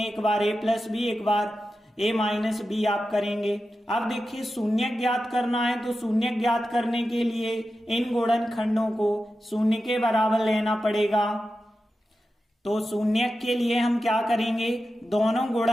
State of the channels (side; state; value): both; normal; correlation 0.92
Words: एक बार a प्लस बी एक बार a माइनस बी आप करेंगे। अब देखिए शून्य ज्ञात करना है, तो शून्य ज्ञात करने के लिए इन गुणनखंडों को शून्य के बराबर लेना पड़ेगा। तो शून्य के लिए हम क्या करेंगे, दोनों